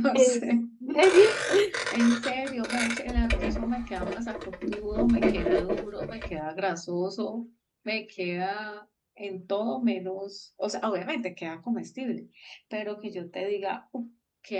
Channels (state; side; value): identical; both; correlation 1.00